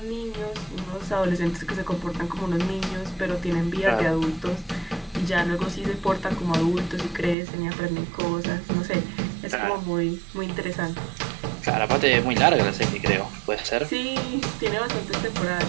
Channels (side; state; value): left; drops out; at 7.4 s